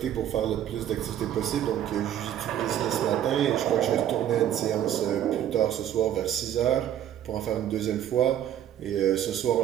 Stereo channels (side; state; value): left; quieter; 10.9 dB